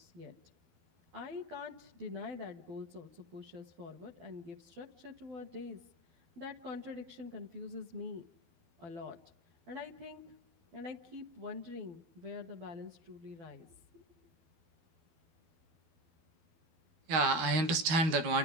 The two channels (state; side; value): late; left; 12 ms